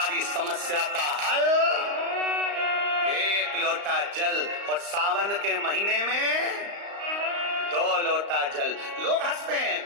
समस्या का हल 1 लोटा जल। और सावन के महीने में 2 लोटा जल। लोग हंसते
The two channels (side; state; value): left; late; 35 ms